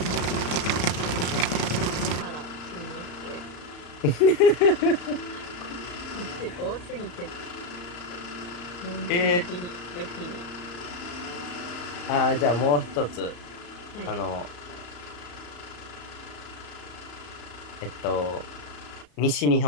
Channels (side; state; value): right; late; 34 ms